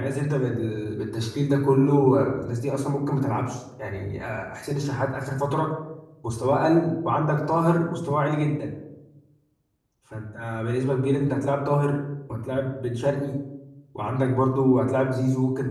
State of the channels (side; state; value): both; identical; correlation 1.00